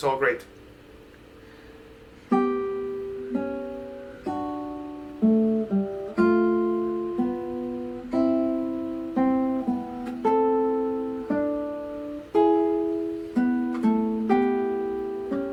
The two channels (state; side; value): identical; both; correlation 1.00